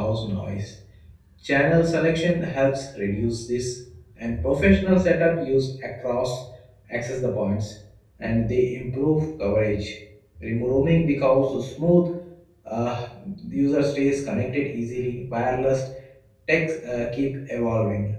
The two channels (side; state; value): both; identical; correlation 1.00